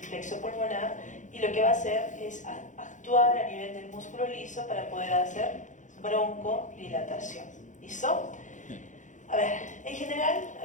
plexo pulmonar y lo que va a hacer es actuar a nivel del músculo liso para poder hacer broncodilatación. ¿Listo? A ver, en general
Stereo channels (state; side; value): late; right; 0.36 ms